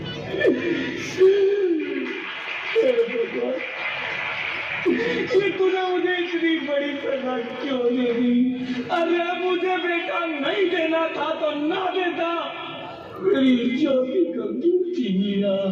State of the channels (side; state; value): both; identical; correlation 1.00